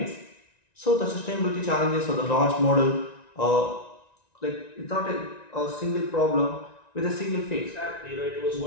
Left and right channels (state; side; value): late; right; 1.9 ms